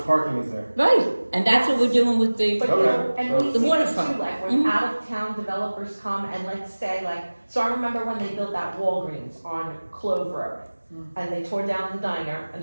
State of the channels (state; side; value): inverted; both; correlation -1.00